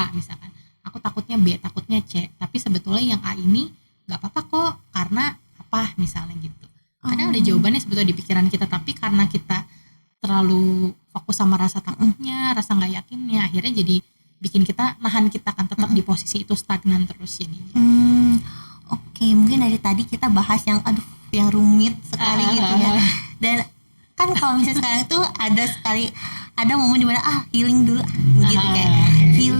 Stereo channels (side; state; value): both; inverted; correlation -1.00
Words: misalkan, aku takutnya B, takutnya C, tapi sebetulnya yang A ini gak apa-apa kok karena apa misalnya gitu. Kadang ada jawabannya sebetulnya di pikiran kita, tapi karena kita terlalu fokus sama rasa takutnya, rasa nggak yakinnya, akhirnya jadi bikin kita nahan kita kan tetap di posisi itu, stagnan terus jadinya. Oke, mungkin dari tadi kita bahas yang yang rumit sekali gitu ya. Dan kan kalau misalnya sekarang itu ada momen dimana healing dulu gitu kayak